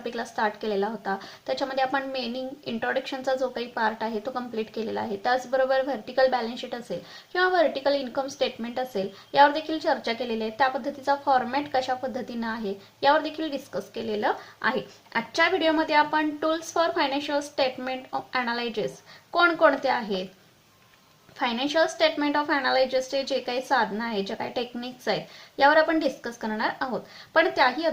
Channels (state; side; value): identical; both; correlation 1.00